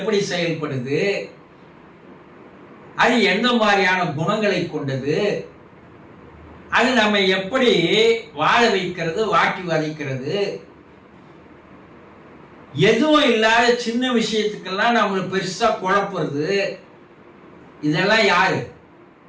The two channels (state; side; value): identical; both; correlation 1.00